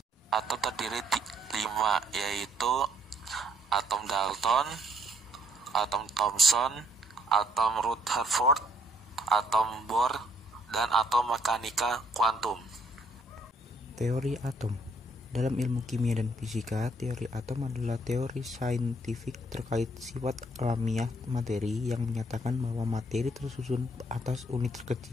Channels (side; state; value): both; normal; correlation 0.67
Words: Atom terdiri 5, yaitu atom Dalton, atom Thomson, atom Rutherford, atom Bohr, dan atom mekanika kuantum. Teori atom. Dalam ilmu kimia dan fisika, teori atom adalah teori saintifik terkait sifat alamiah materi yang menyatakan bahwa materi tersusun atas unit